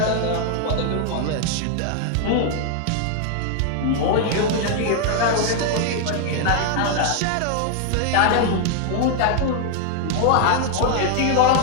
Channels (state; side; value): different; both; correlation 0.00